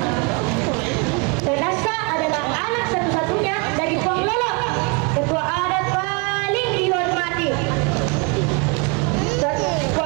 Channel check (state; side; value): quieter; left; 31.4 dB